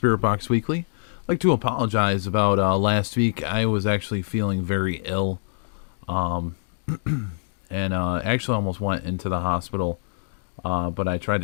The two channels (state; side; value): silent; right; digital silence